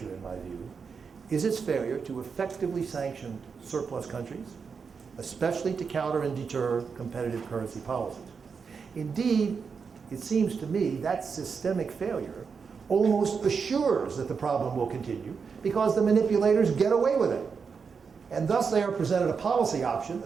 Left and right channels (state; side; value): quieter; left; 5.7 dB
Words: in my view, is its failure to effectively sanction surplus countries, especially to counter and deter competitive currency policies. Indeed, it seems to me that systemic failure almost assures that the problem will continue because the manipulators get away with it. And thus they are presented a policy option,